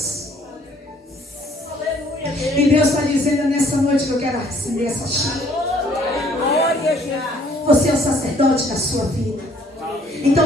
E Deus está dizendo nessa noite que eu quero acender essa chama. Você é o sacerdote da sua vida.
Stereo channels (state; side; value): normal; both; correlation 0.61